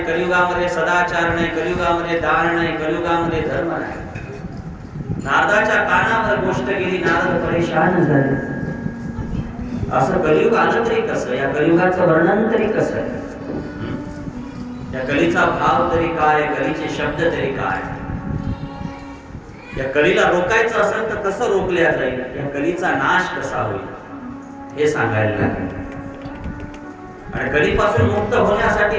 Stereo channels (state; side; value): identical; both; correlation 1.00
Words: कलियुगामध्ये सदाचार नाही, कलियुगामध्ये दान नाही, कलियुगामध्ये धर्म नाही. नारदाच्या कानावर गोष्ट गेली, नारद परेशान झाले. असं कलियुग आलं तरी कसं, या कलियुगाचं वर्णन तरी कसं, या कलीचा भाव तरी काय, कलीचे शब्द तरी काय. या कलीला रोखायचं असेल तर कसं रोखल्या जाईल, या कलीचा नाश कसा होईल हे सांगायला लागेल. आणि कलीपासून मुक्त